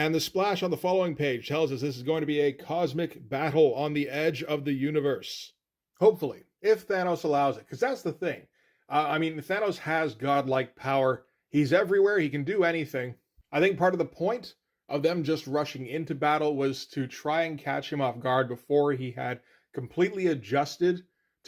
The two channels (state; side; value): identical; both; correlation 1.00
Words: the splash on the following page tells us this is going to be a cosmic battle on the edge of the universe. Hopefully, if Thanos allows it, because that's the thing. Thanos has godlike power. He's everywhere. He can do anything. I think part of the point of them just rushing into battle was to try and catch him off guard before he had completely adjusted